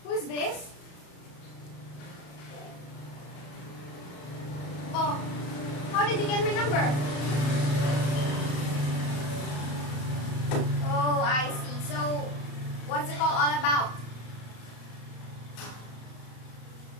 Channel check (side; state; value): right; late; 34 ms